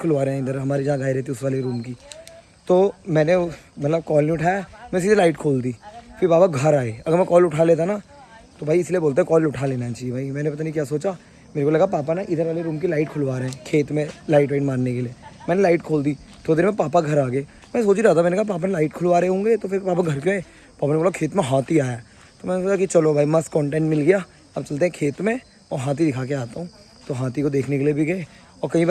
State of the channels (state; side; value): identical; both; correlation 1.00